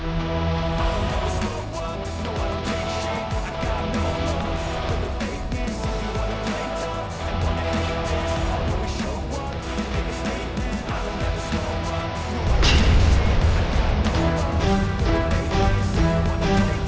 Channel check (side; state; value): both; identical; correlation 1.00